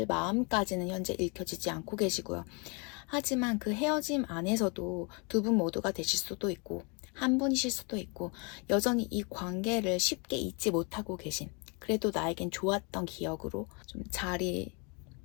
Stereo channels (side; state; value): right; quieter; 32.7 dB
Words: 마음까지는 현재 읽혀지지 않고 계시고요. 하지만 그 헤어짐 안에서도 두 분 모두가 되실 수도 있고 한 분이실 수도 있고 여전히 이 관계를 쉽게 잊지 못하고 계신, 그래도 나에겐 좋았던 기억으로 좀